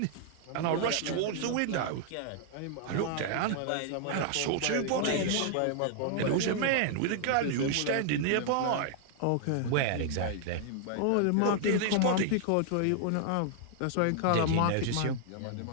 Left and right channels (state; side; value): different; both; correlation -0.01